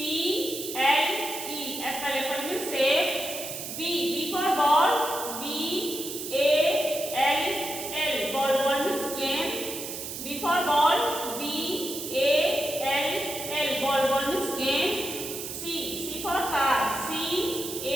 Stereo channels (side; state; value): right; noise; hiss, 7 dB below the sound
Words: apple, apple means सेब। B for ball, B-A-L-L, ball, ball means game। B for ball, B-A-L-L, ball, ball means game। C for car,